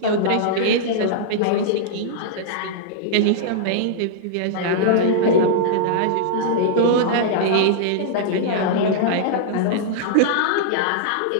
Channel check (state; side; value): different; both; correlation -0.02